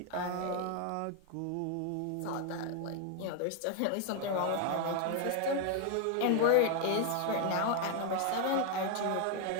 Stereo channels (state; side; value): different; both; correlation 0.00